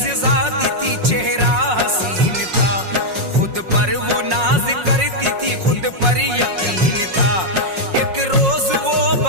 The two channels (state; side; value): late; left; 5.5 ms